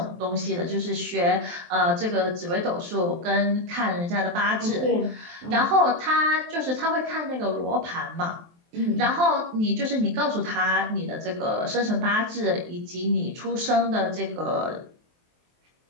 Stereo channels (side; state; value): left; late; 23 ms